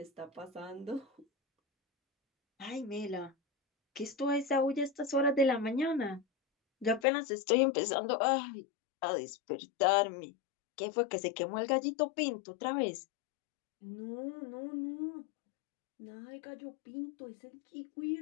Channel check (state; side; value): drops out; right; at 7.1 s